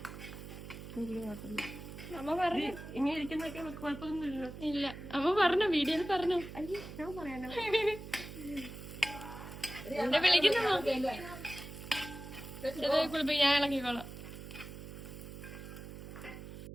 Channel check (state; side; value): noise; right; hum, 11 dB below the sound